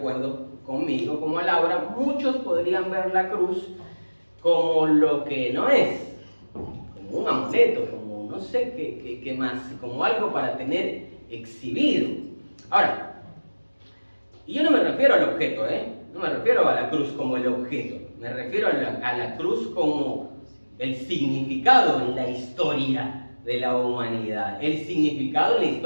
conmigo, como a Laura, muchos podrían ver la cruz como lo que no es, como un amuleto, como no sé qué más, como algo para tener exhibido. Ahora, y yo no me refiero al objeto, no me refiero a la cruz como el objeto, me refiero a la cruz como el significado en la historia de la humanidad, el significado en la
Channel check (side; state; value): both; inverted; correlation -1.00